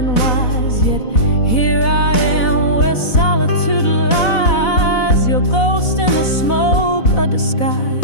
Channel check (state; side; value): late; right; 4.0 ms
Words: wise, yet here I am where solitude lies. Your ghost in the smoke, a